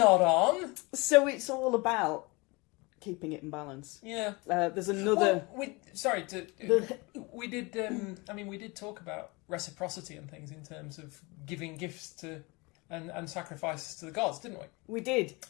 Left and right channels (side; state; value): right; quieter; 26.2 dB